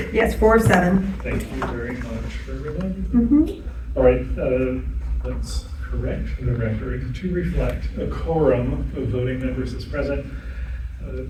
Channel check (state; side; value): identical; both; correlation 1.00